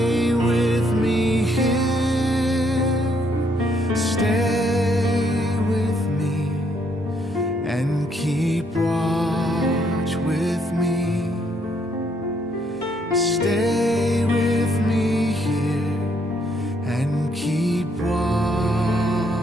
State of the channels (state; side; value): normal; both; correlation 0.71